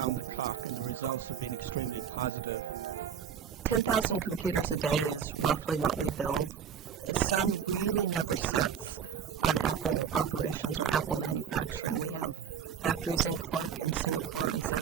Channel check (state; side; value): quieter; left; 7.8 dB